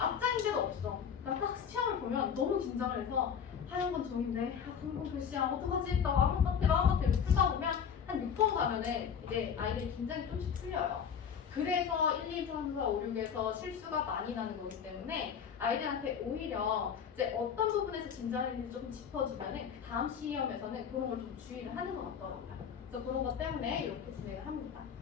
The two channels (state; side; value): quieter; right; 7.5 dB